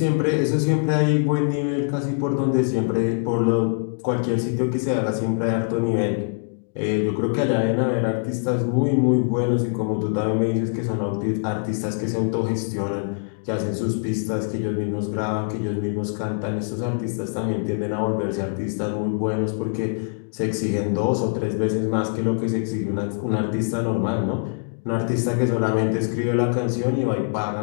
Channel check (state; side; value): silent; right; 63 dB below the other